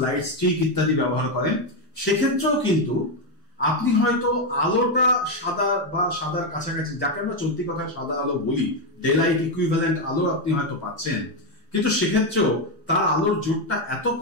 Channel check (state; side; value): normal; both; correlation 0.06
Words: লাইট স্টিক ইত্যাদি ব্যবহার করেন। সেক্ষেত্রেও কিন্তু আপনি হয়তো আলোটা সাদা বা সাদার কাছাকাছি, যাকে আমরা চলতি কথায় সাদা আলো বলি, ডে লাইট ইকুইভ্যালেন্ট আলো আপনি হয়তো পাচ্ছেন, কিন্তু সেক্ষেত্রেও তার আলোর জোরটা এত